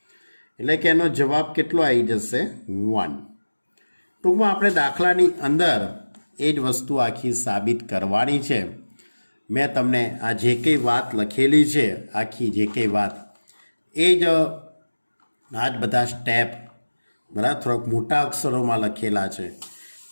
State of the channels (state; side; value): inverted; both; correlation -1.00